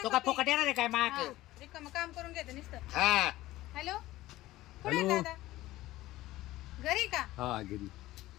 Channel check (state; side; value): quieter; right; 16.7 dB